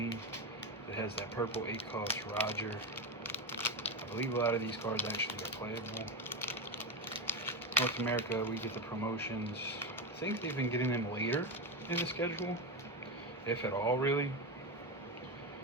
It has that purple 8-cost Roger. I believe a lot of these cards actually are playable. North America, we get the promotions. I think they've been getting them later in the schedule, if at all, really.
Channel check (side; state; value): both; normal; correlation 0.14